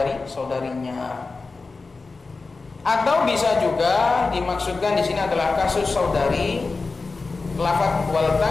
Atau bisa juga dimaksudkan di sini adalah kasus saudari, lafaz wal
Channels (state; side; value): quieter; right; 3.9 dB